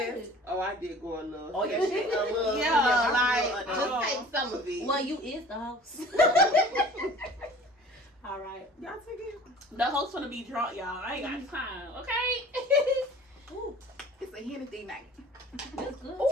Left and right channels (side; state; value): both; normal; correlation 0.46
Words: sis. Oh, I did go a little. Oh, yeah, shit. A little. Yeah, like, like, just take some of it. Well, you is the host. All right. Y'all take it. The host gonna be drunk, y'all. I ain't got time, okay? Ooh, It's a Hennessy night. that's good